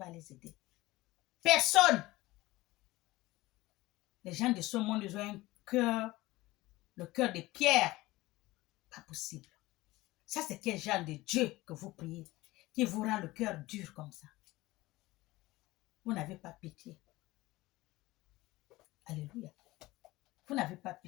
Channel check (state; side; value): quieter; right; 19.1 dB